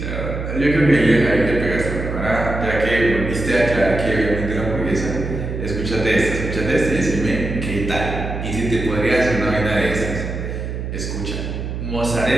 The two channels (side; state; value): right; noise; hum, 5 dB below the sound